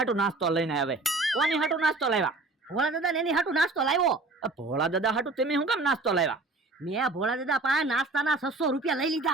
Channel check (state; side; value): quieter; left; 3.3 dB